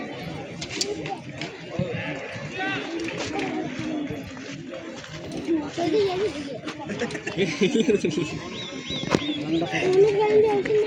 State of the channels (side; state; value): both; identical; correlation 1.00